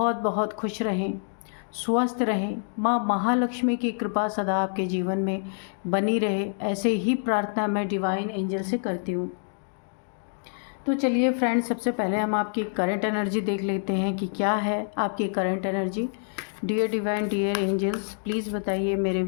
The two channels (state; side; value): silent; right; 60 dB below the other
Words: बहुत खुश रहें, स्वस्थ रहें। माँ महालक्ष्मी की कृपा सदा आपके जीवन में बनी रहे, ऐसे ही प्रार्थना मैं डिवाइन एंजल से करती हूँ। तो चलिए फ्रेंड्स, सबसे पहले हम आपकी करंट एनर्जी देख लेते हैं कि क्या है आपकी current energy. Dear divine, dear angels, please बताइए मेरे